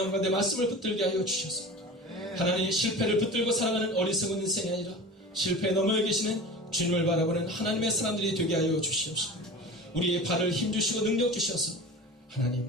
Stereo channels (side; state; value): both; normal; correlation 0.34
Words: 가운데 말씀을 붙들게 하여 주셔서 하나님, 실패를 붙들고 살아가는 어리석은 인생이 아니라 실패에 넘어 계시는 주님을 바라보는 하나님의 사람들이 되게 하여 주시옵소서. 우리의 발을 힘주시고 능력 주셔서